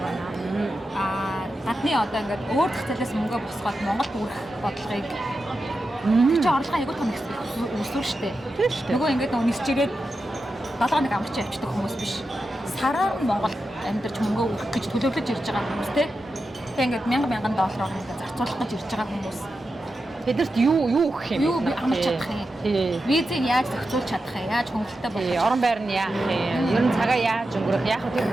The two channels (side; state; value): both; normal; correlation 0.90